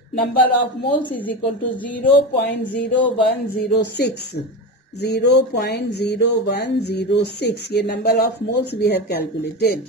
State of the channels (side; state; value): both; normal; correlation 0.22